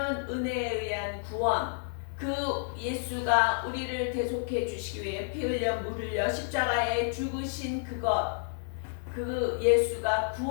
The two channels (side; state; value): right; silent; digital silence